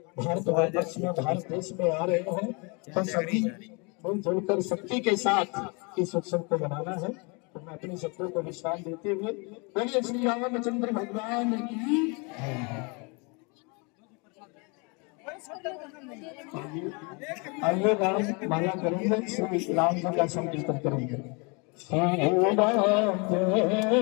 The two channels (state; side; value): quieter; right; 31.4 dB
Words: भारतवर्ष में भारत देश में आ रहे हैं। तो सभी मिलजुल कर शक्ति के साथ इस उत्सव को मनाना है। तो मैं अपने शब्दों को विश्राम देते हुए बोलिए श्री रामचंद्र भगवान की। आइए राम माला करेंगे, श्री राम जी का संकीर्तन करेंगे। श्री राम जय राम जय जय